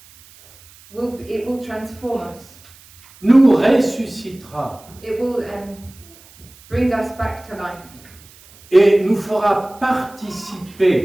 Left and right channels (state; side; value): noise; right; hiss, 24 dB below the sound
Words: It will transform us. Nous ressuscitera. It will bring us back to life. Et nous fera